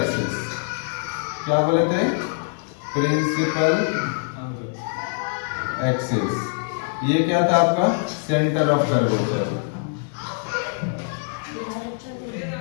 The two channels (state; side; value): silent; right; digital silence